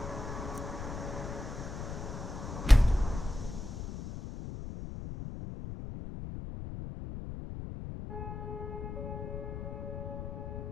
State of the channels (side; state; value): left; noise; rumble, 7 dB below the sound